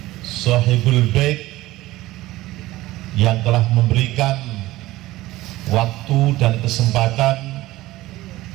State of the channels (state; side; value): quieter; left; 17.5 dB